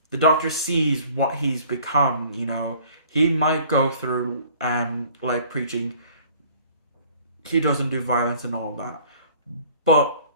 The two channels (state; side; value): inverted; both; correlation -0.53